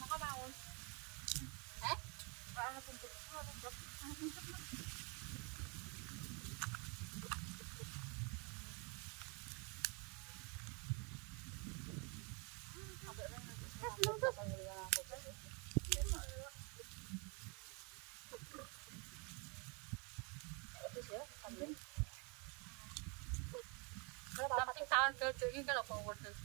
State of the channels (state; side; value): quieter; left; 32.9 dB